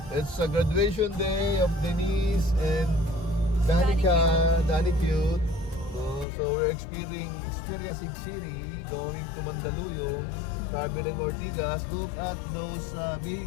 It's a graduation day of Denise and Danica, Dani Cute. So we're experiencing City, going to Mandaluyong, traveling Ortigas. Look at those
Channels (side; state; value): right; drops out; at 6.2 s